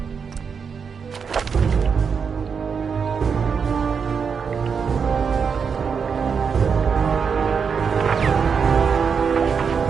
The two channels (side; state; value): left; quieter; 6.2 dB